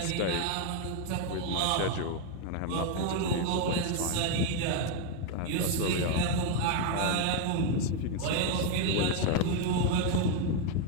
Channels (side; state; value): both; different; correlation 0.01